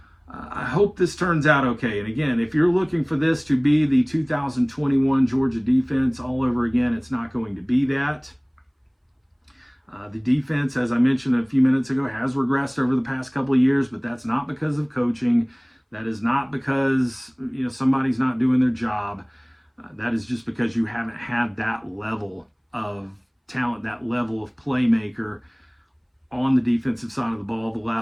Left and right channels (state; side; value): identical; both; correlation 1.00